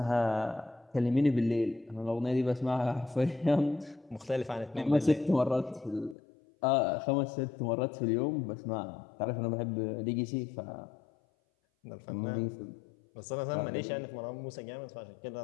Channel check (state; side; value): drops out; right; at 6.2 s